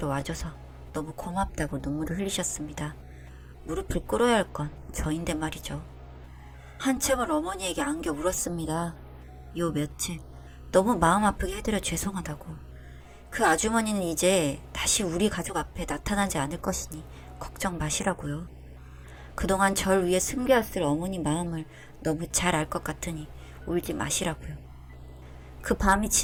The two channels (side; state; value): both; identical; correlation 1.00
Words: 와줘서 너무 고맙다고 눈물을 흘리셨습니다. 무릎을 꿇어야 할 건 저인데 말이죠. 한참을 어머니에게 안겨 울었습니다. 요 며칠 너무 마음 아프게 해드려 죄송하다고. 그 아주머니는 이제 다시 우리 가족 앞에 나타나지 않을 것이니 걱정 마시라고요. 그동안 절 위해 숨겨왔을 어머니 마음을 너무 잘 알 것 같으니 울지 마시라고요. 그 밤이